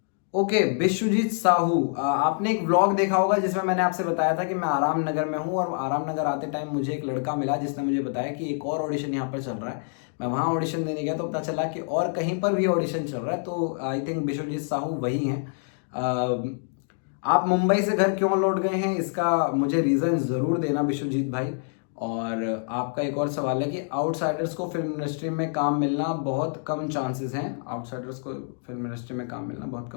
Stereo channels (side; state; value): right; silent; 57 dB below the other